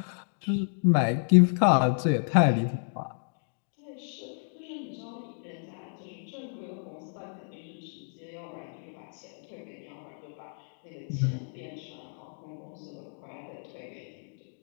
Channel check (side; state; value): right; silent; 56 dB below the other